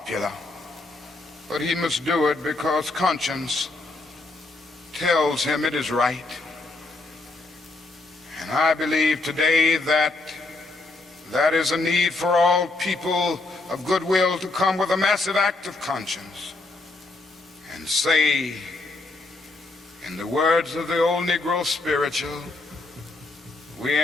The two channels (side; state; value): right; quieter; 3.2 dB